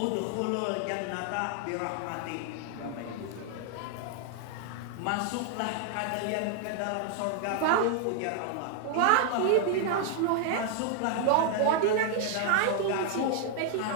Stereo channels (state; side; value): different; both; correlation 0.00